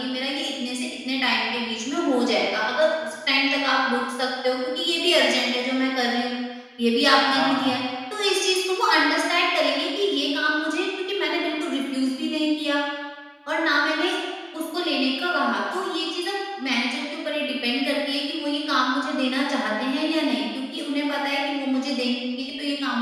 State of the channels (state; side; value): identical; both; correlation 1.00